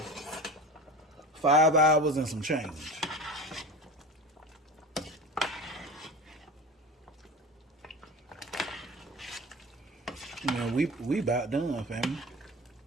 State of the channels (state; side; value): normal; both; correlation 0.31